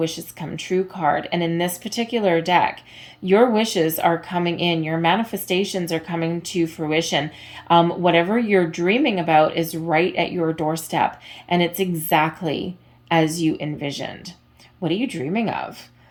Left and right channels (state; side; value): identical; both; correlation 1.00